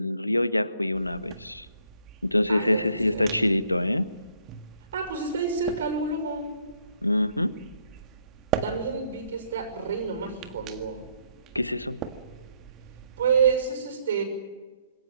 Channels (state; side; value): inverted; both; correlation -0.69